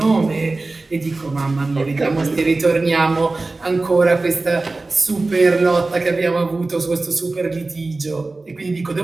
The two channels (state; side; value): quieter; left; 3.4 dB